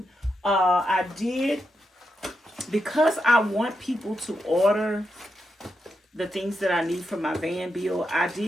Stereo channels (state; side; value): normal; both; correlation 0.85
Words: I did, because I want people to order the things that I need for my van build, I